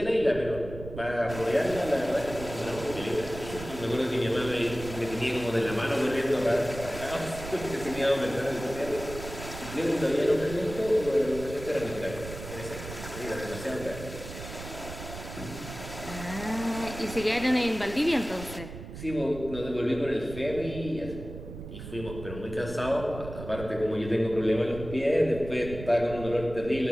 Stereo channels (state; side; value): noise; right; rumble, 11 dB below the sound